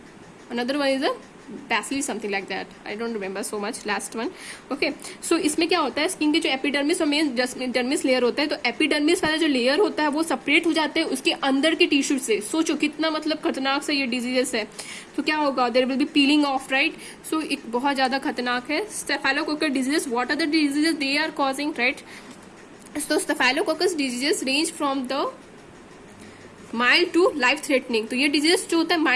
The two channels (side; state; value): both; identical; correlation 1.00